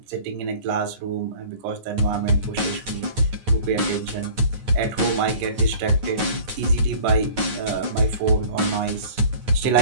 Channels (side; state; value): left; late; 9.4 ms